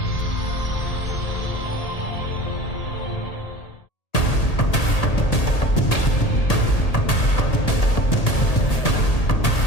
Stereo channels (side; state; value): right; late; 1.8 ms